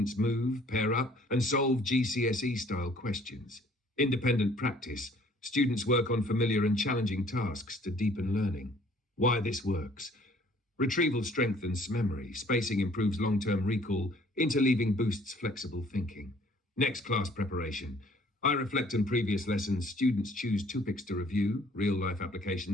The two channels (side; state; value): both; normal; correlation 0.57